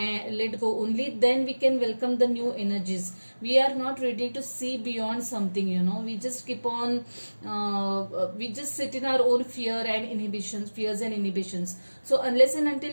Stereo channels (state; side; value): inverted; both; correlation -1.00